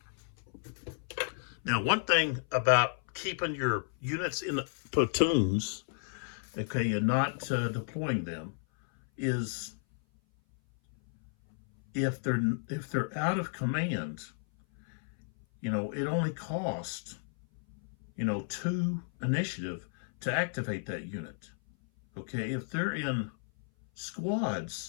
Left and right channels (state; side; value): silent; right; 56 dB below the other